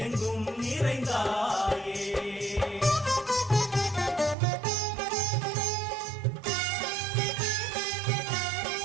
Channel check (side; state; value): left; drops out; at 4.4 s